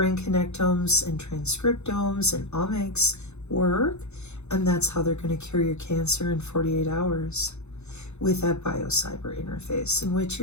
connectomes and transcriptomes and omics work. And that's how they're going to cure your cancer in 48 hours with that biocyber interface, in which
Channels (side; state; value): right; late; 0.81 ms